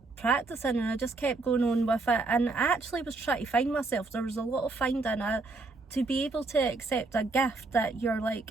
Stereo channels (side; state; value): left; quieter; 3.5 dB